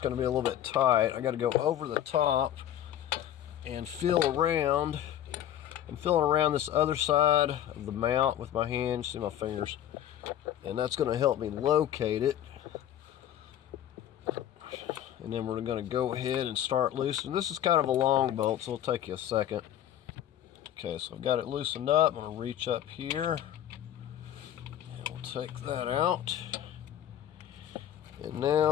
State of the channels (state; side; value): quieter; right; 11.2 dB